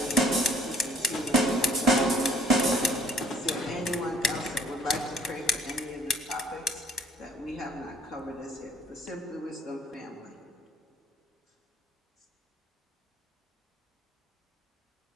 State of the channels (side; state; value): both; normal; correlation 0.58